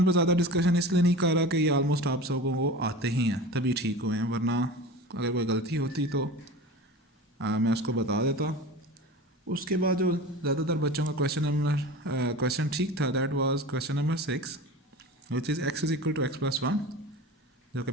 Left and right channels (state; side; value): normal; both; correlation 0.34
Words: पर ज़्यादा डिस्कशन इसलिए नहीं कर रहा कि ये ऑलमोस्ट आप सबको वो आते ही हैं तभी ठीक हुए हैं, वरना अगर कोई गलती होती तो मैं उसको बता देता। उसके बाद जो ज़्यादातर बच्चों का क्वेश्चन ठीक था that was question number 6 which is x is equal to x+1, जो कि